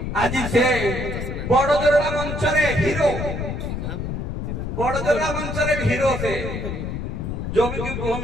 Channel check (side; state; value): left; noise; rumble, 4 dB below the sound